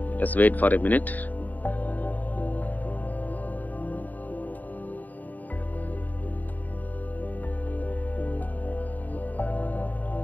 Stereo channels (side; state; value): right; late; 0.082 ms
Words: Just wait for a minute.